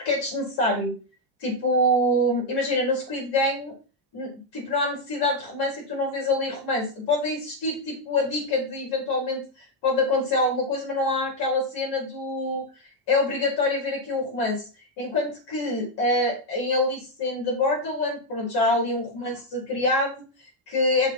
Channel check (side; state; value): both; normal; correlation 0.00